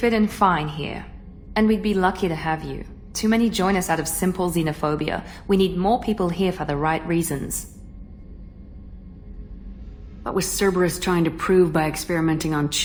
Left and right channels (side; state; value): both; identical; correlation 1.00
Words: in fine here, and we'd be lucky to have you. Too many join us out of simple xenophobia. We need more people here for the right reasons. What was Cerberus trying to prove by experimenting on